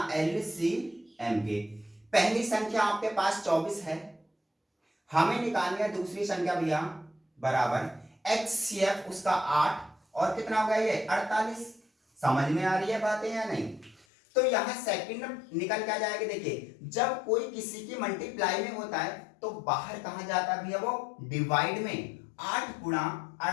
LCM के। पहली संख्या आपके पास 24 है, हमें निकालनी है दूसरी संख्या भैया बराबर HCF उसका 8 और कितना होगा ये 48। समझ में आ रही है बातें या नहीं। तो यहां सेकंड निकल के आ जाएगी। देखिए जब कोई किसी की मल्टीप्लाई में होता है तो बाहर कहां जाता है भैया, वो डिवाइड में। 8 गुणा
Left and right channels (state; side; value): drops out; right; at 14.1 s